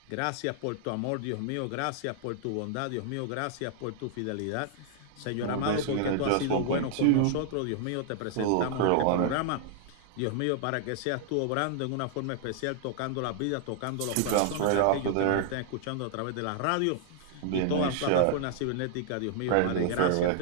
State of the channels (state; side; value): different; both; correlation 0.00